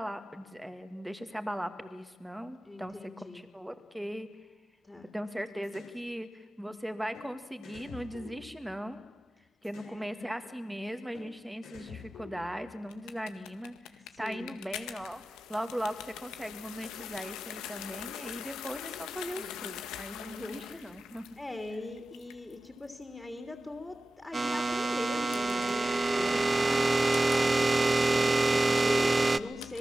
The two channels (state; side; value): normal; both; correlation 0.95